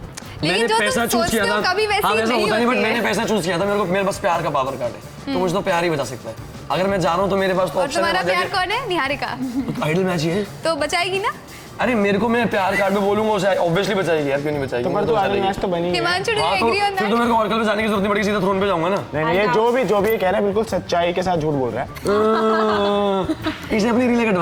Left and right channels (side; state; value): both; identical; correlation 1.00